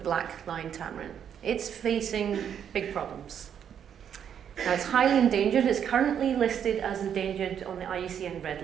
Tamarin. It's facing big problems. Now, it's highly endangered. It's currently listed as endangered on the IUCN Red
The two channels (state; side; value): quieter; left; 8.6 dB